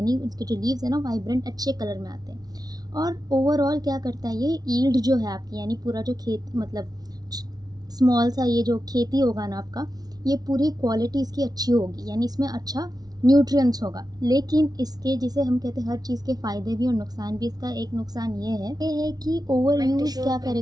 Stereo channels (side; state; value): left; late; 0.19 ms